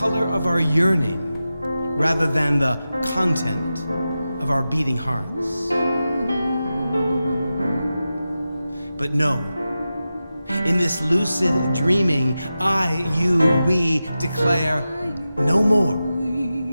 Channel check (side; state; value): both; inverted; correlation -0.93